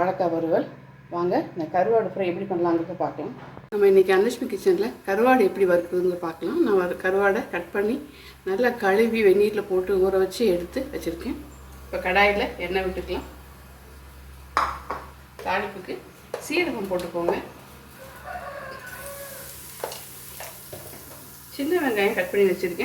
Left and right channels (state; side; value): identical; both; correlation 1.00